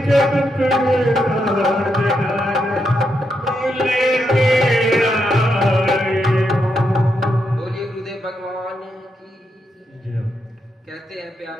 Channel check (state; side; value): normal; both; correlation 0.81